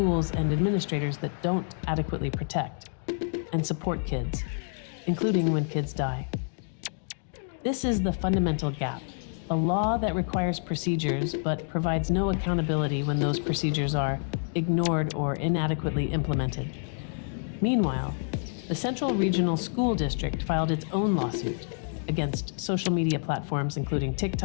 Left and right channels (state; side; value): silent; right; 59 dB below the other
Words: and administrators that don't adequately protect and support kids, including when kids die. This is the fundamental gap. A law that requires procedures but provides no accountability when those procedures are ignored or inadequately implemented. Meanwhile, the Central Regional School District filed its own lawsuit against social media platforms including